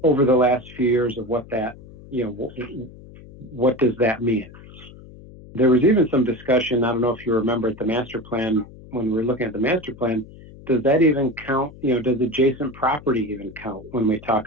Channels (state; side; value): noise; left; hum, 19 dB below the sound